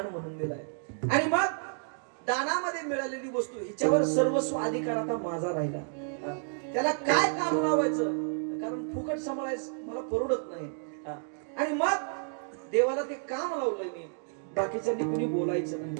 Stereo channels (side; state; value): left; silent; digital silence